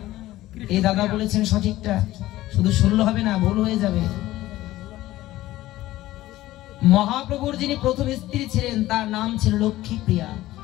এই দাদা বলেছেন সঠিকটা, শুধু শুনলে হবে না, ভুল হয়ে যাবে। মহাপ্রভুর যিনি প্রথম স্ত্রী ছিলেন তার নাম ছিল লক্ষ্মীপ্রিয়া।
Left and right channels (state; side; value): quieter; right; 16.0 dB